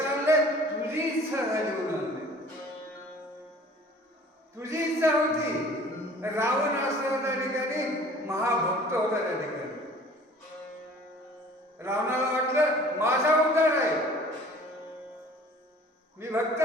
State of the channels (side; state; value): both; normal; correlation 0.49